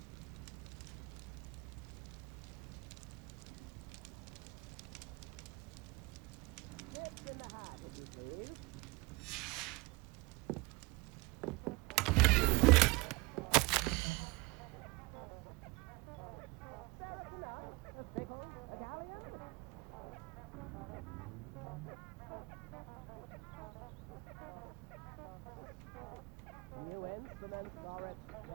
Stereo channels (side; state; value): left; quieter; 24.7 dB